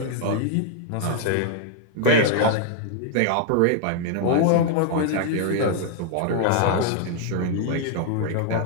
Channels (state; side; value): different; both; correlation -0.01